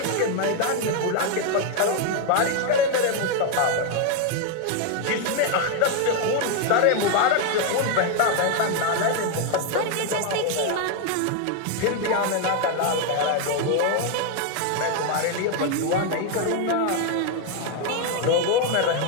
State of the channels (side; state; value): both; different; correlation 0.01